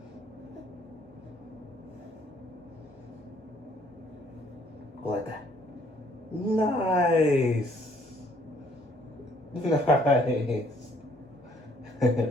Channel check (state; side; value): normal; both; correlation 0.63